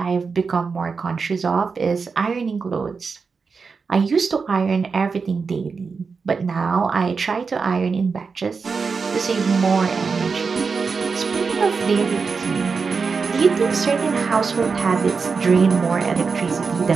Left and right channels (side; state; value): left; quieter; 5.1 dB